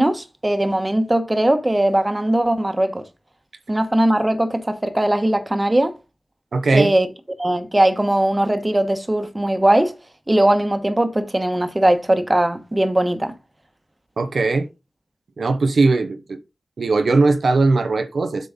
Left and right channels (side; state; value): both; normal; correlation 0.98